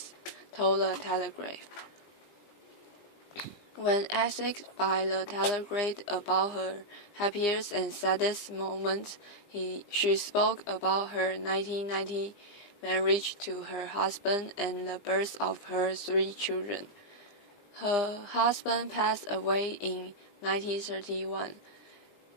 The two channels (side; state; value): right; late; 20 ms